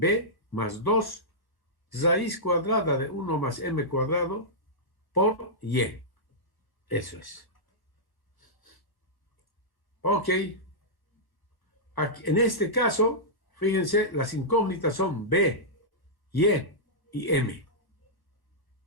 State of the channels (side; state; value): right; late; 1.1 ms